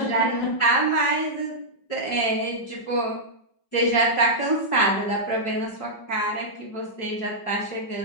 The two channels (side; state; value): right; late; 5.3 ms